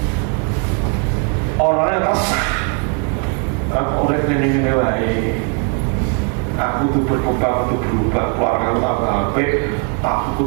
orangnya kesah. Orang ini wae, aku tuh berkembang, tuh berubah, keluarga tambah apik,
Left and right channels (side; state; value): left; quieter; 37.0 dB